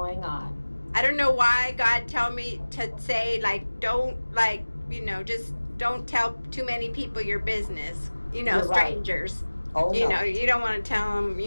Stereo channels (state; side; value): inverted; both; correlation -1.00